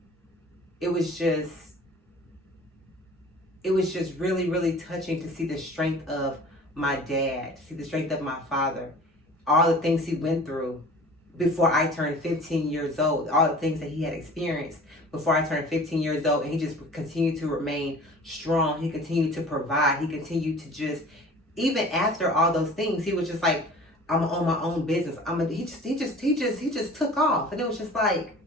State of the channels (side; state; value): both; normal; correlation 0.44